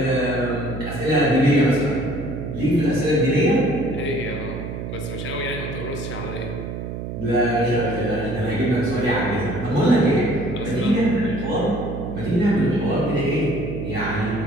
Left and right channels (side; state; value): right; noise; hum, 7 dB below the sound